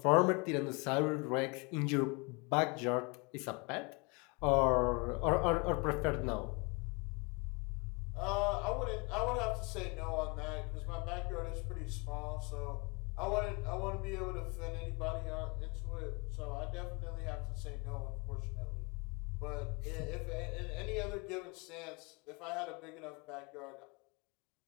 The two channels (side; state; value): right; quieter; 30.1 dB